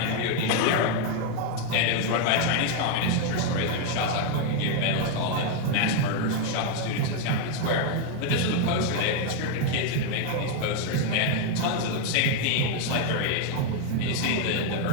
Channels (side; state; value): both; different; correlation 0.01